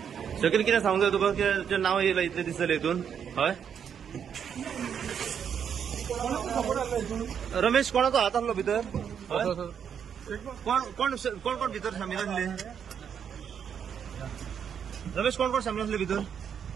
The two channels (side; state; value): left; quieter; 7.9 dB